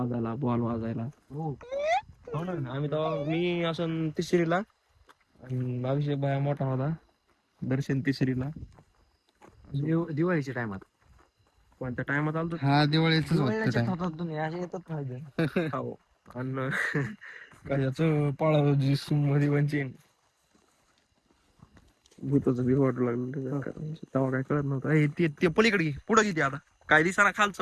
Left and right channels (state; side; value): identical; both; correlation 1.00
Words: बॉल वाजायला. आम्ही तर मी असं तिसरीला आणि अभिषेक भाया मोठा होता. दर्शन तिसरीला दिवाळीच्या टायमात. कोणत्या टायमात आलो हा दिवाळीच तुम्ही असे येतात माहिती. हो आणि कशाचं पाळावजी मध्ये वंचीन भूताचं बी वाटू लागलं. तेव्हा काय कळत नव्हतं. ते पलीकडे पुढे किती आता काय दिसाना